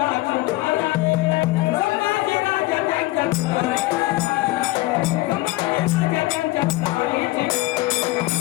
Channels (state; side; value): quieter; right; 19.3 dB